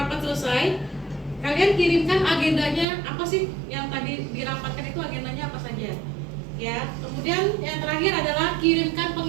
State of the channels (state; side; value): drops out; left; at 2.9 s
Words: selesai, kalian kirimkan agendanya apa sih yang tadi dirapatkan, itu agendanya apa saja. Ya. Kemudian yang terakhir adalah kirimkan